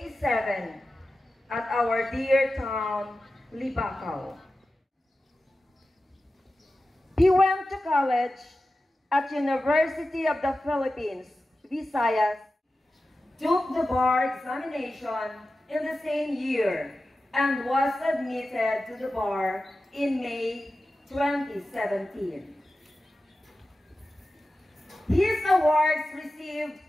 at our dear town, Libacao. He went to college at University of the Philippines, Visayas, took the bar examination in the same year, and was admitted to the bar in May 2017. His awards received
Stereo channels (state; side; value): normal; both; correlation 0.94